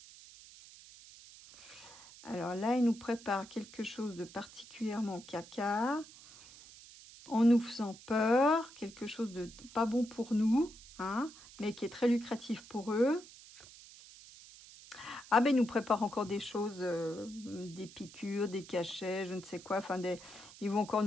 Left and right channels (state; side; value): noise; right; hiss, 19 dB below the sound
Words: Alors là, il nous prépare quelque chose de particulièrement caca, en nous faisant peur, quelque chose de pas bon pour nous. Hein. mais qui est très lucratif pour eux. Ah ben ils nous préparent encore des choses, des piqûres, des cachets, je ne sais quoi. Enfin, ils vont encore